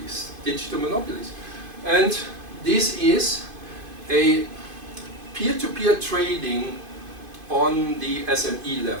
digital monopolies. And this is a peer-to-peer trading on the SME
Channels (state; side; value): late; left; 2.5 ms